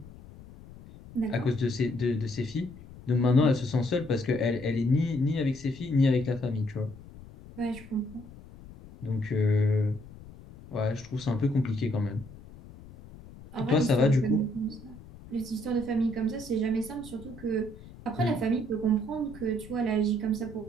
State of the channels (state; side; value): noise; left; rumble, 18 dB below the sound